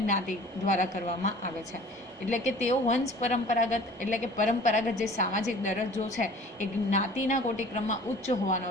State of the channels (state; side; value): normal; both; correlation 0.47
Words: દ્વારા કરવામાં આવે છે. એટલે કે તેઓ વંશ પરંપરાગત એટલે કે પરંપરાગત જે સામાજિક દરજ્જો છે એ જ્ઞાતિના કોટિક્રમમાં ઉચ્ચ